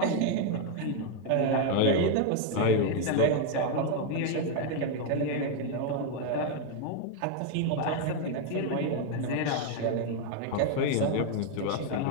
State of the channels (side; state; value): both; different; correlation 0.01